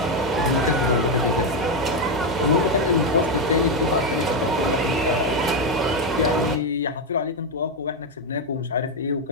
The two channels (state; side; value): normal; both; correlation 0.06